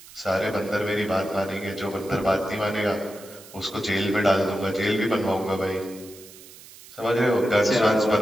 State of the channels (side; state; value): right; noise; hiss, 19 dB below the sound